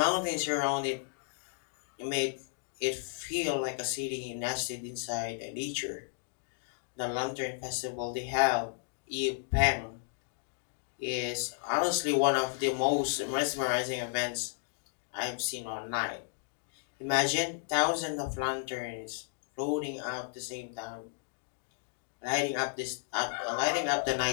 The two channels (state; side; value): silent; right; digital silence